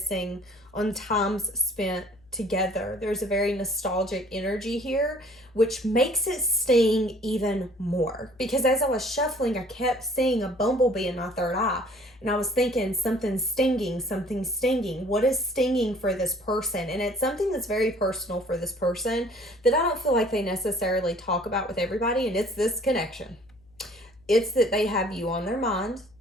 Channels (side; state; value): left; noise; hum, 29 dB below the sound